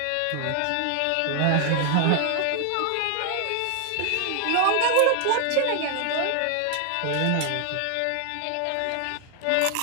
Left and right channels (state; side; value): different; both; correlation 0.00